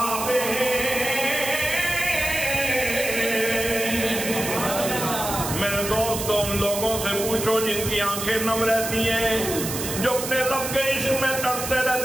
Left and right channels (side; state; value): right; noise; hiss, 5 dB below the sound